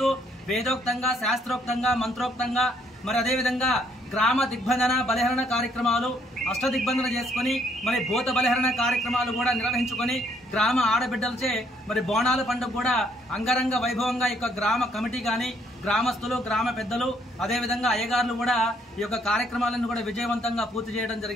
వేదోక్తంగా శాస్త్రోక్తంగా మంత్రోక్తంగా మరి అదేవిధంగా గ్రామ దిగ్బంధన బలిహరణ కార్యక్రమాలు అష్టదిగ్బంధన చేసుకుని మరి భూత బలిహరణ కార్యక్రమాలు కూడా నిర్వహించుకొని గ్రామ ఆడబిడ్డలచే మరి బోనాల పండుగ కూడా అంగరంగ వైభవంగా ఈ యొక్క గ్రామ కమిటీ కానీ గ్రామస్తులు గ్రామ పెద్దలు అదేవిధంగా అయ్యగారులు కూడా ఈ యొక్క కార్యక్రమాలను కూడా విజయవంతంగా పూర్తి చేయడం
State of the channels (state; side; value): normal; both; correlation 0.68